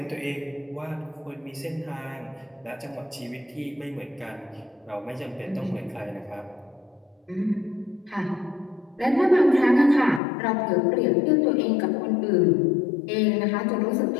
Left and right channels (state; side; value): drops out; right; at 10.2 s